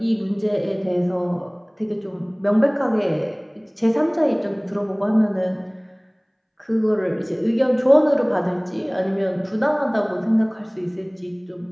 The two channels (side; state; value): both; identical; correlation 1.00